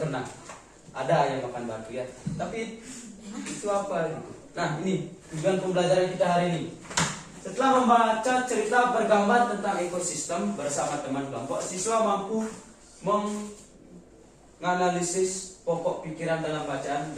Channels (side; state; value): both; identical; correlation 1.00